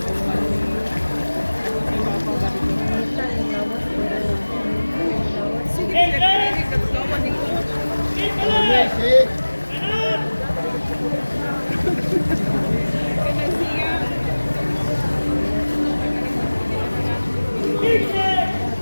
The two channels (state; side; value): inverted; both; correlation -1.00